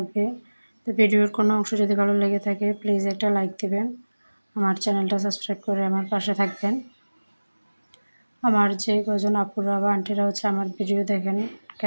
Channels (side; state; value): both; inverted; correlation -1.00